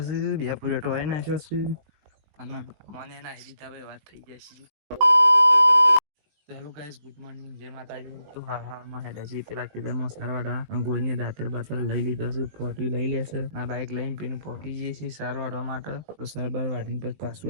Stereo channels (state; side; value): late; left; 19 ms